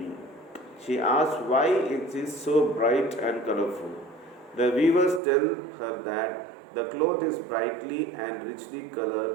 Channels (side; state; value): left; drops out; at 5.2 s